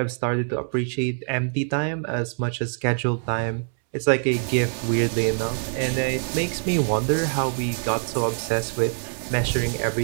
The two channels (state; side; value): silent; left; 62 dB below the other